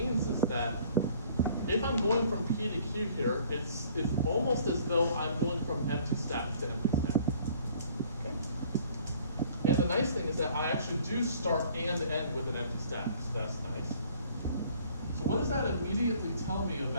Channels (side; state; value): both; inverted; correlation -0.56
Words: is that if I'm going from P to Q here, it's almost as though I'm going from empty stack to empty stack. Okay. And the nice thing is that I actually do start and end with an empty stack, so that's nice. So what does that immediately tell me